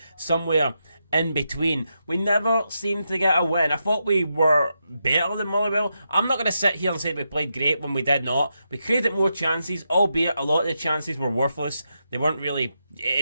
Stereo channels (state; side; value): inverted; both; correlation -0.85